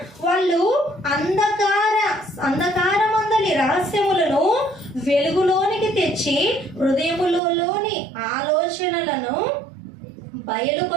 వాళ్ళు అంధకారమందలి రహస్యములను వెలుగులోనికి తెచ్చి హృదయములోని ఆలోచనలను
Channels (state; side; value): drops out; left; at 7.4 s